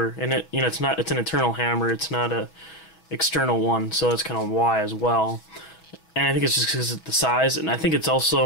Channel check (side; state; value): right; late; 6.2 ms